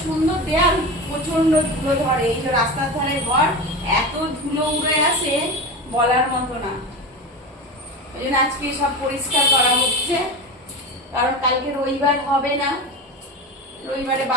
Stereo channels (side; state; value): both; normal; correlation 0.26